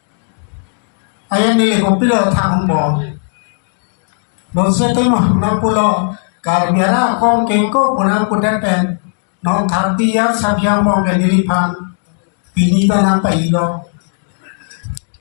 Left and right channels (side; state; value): right; silent; digital silence